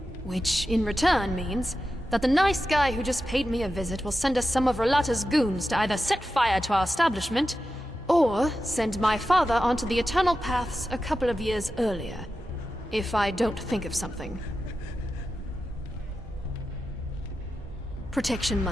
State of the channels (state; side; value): normal; both; correlation 0.91